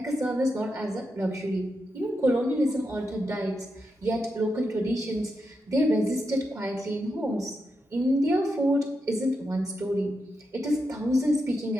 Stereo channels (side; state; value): both; normal; correlation 0.86